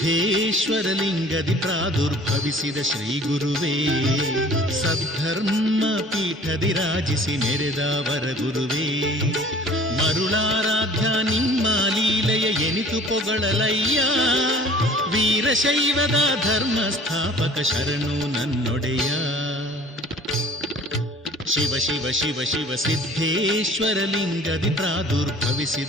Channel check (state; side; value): normal; both; correlation 0.49